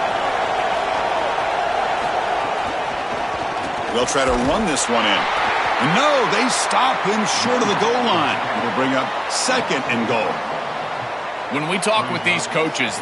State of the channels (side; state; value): both; identical; correlation 1.00